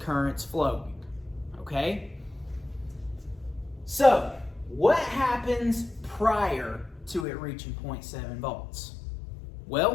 flowing, okay? So, what happens prior to it reaching 0.7 volts?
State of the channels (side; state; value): right; drops out; at 7.2 s